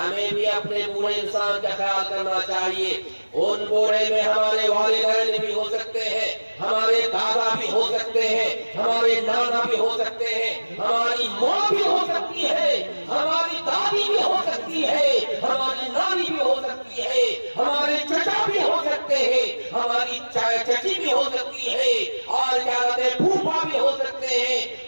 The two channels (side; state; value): both; inverted; correlation -1.00